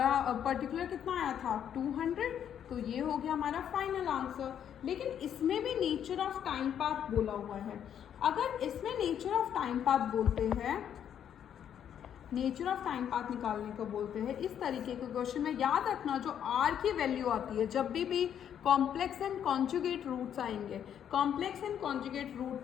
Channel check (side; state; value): right; quieter; 9.3 dB